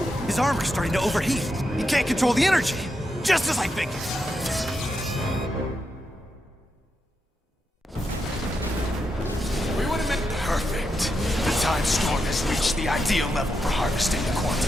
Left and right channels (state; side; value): normal; both; correlation 0.85